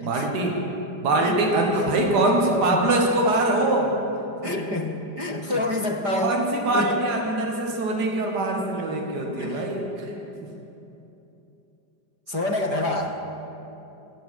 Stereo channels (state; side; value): late; left; 5.0 ms